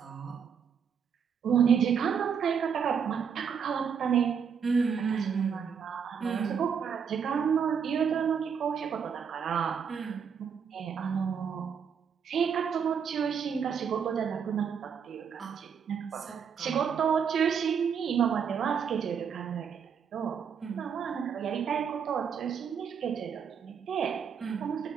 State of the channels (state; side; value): quieter; left; 7.0 dB